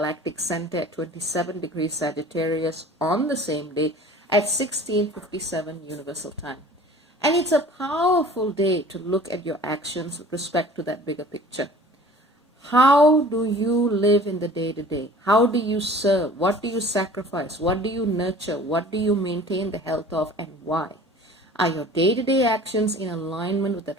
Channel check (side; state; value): both; normal; correlation 0.46